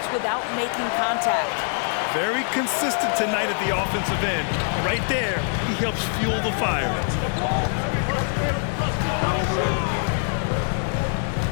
without making contact. Very consistent tonight at the offensive end. Right there, he helps fuel the fire.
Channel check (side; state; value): right; silent; 63 dB below the other